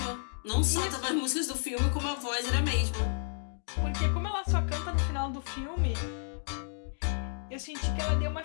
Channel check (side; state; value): right; silent; digital silence